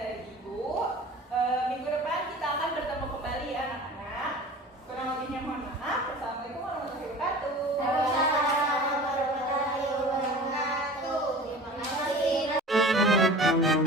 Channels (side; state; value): both; normal; correlation 0.39